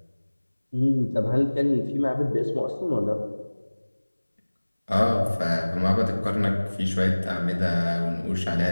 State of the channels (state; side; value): inverted; both; correlation -1.00